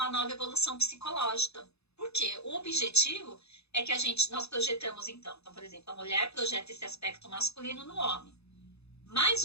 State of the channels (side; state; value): right; late; 0.79 ms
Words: nova evolução psicológica. Porque o objetivo é que nós projetamos então, por exemplo, a mulher projeta esse aspecto masculino no homem. Mas